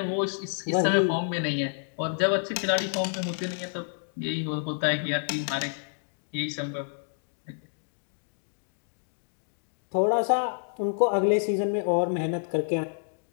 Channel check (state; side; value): silent; right; digital silence